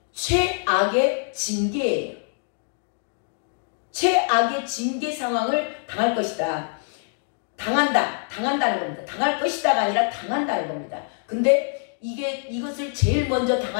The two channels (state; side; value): silent; right; 56 dB below the other